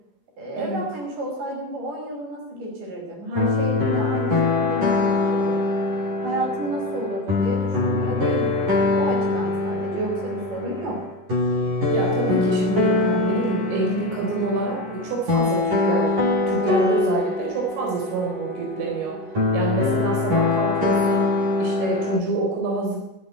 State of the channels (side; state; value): left; late; 11 ms